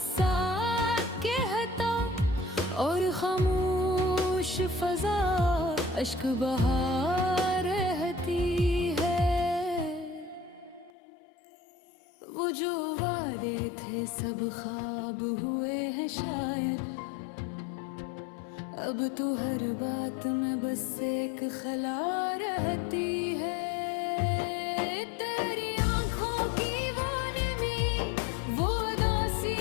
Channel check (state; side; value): drops out; right; at 10.9 s